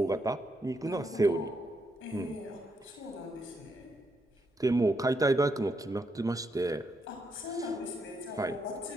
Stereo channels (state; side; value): normal; both; correlation 0.79